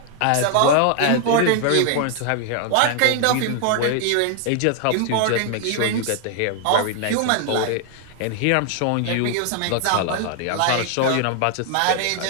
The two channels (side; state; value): both; different; correlation 0.00